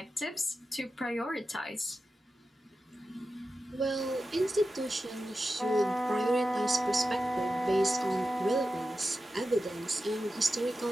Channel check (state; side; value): normal; both; correlation 0.92